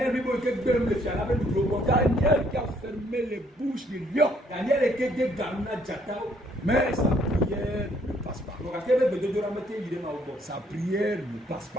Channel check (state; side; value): normal; both; correlation 0.66